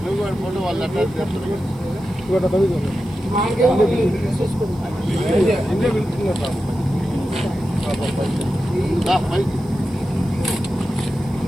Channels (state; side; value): noise; right; hiss, 27 dB below the sound